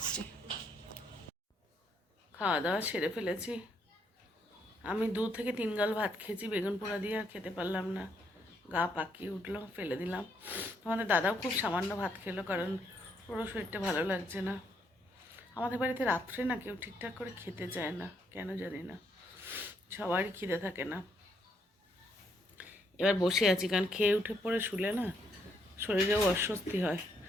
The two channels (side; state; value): both; normal; correlation 0.73